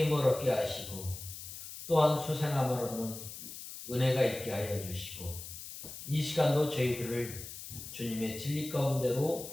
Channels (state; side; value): noise; left; hiss, 11 dB below the sound